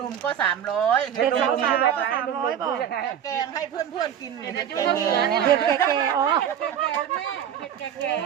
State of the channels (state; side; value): quieter; left; 9.3 dB